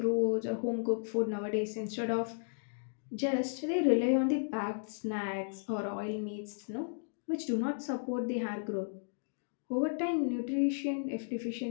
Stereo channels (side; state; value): right; silent; digital silence